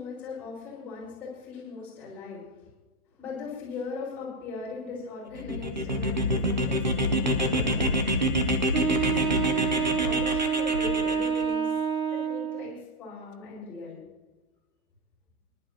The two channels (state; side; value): normal; both; correlation 0.09